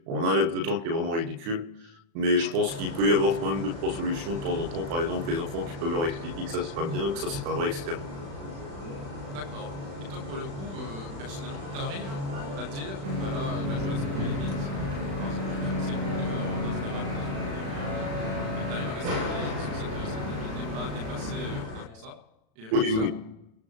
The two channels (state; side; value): late; left; 36 ms